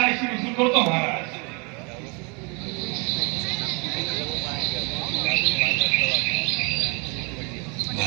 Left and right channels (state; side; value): quieter; left; 31.8 dB